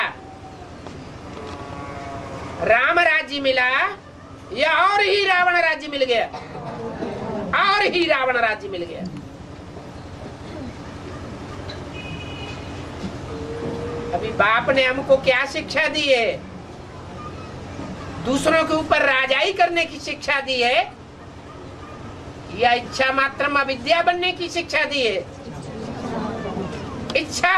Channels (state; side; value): identical; both; correlation 1.00